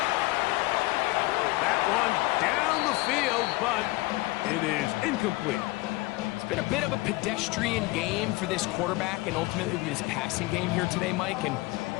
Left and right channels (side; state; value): right; quieter; 21.6 dB